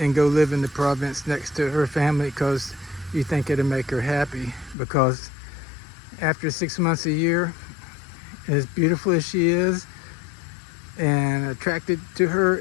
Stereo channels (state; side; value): drops out; right; at 4.8 s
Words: go live in the province next to her family because you think it'll make her happy. Because after 6 months a year, as beautiful as she is and attracted to her